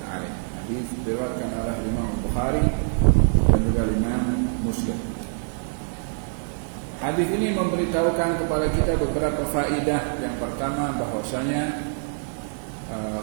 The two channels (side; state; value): left; silent; digital silence